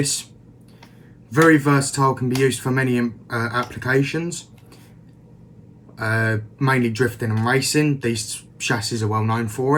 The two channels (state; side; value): identical; both; correlation 1.00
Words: very versatile, can be used for many applications, mainly drifting and racing. These chassis are well known